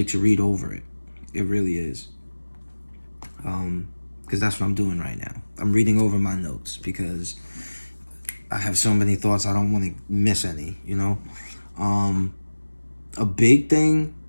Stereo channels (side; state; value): both; inverted; correlation -1.00